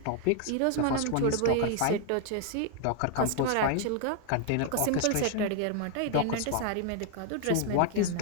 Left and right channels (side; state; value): both; different; correlation 0.00